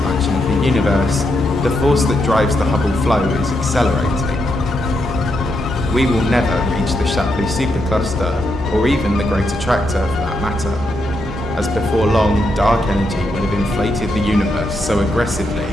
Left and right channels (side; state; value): both; normal; correlation 0.81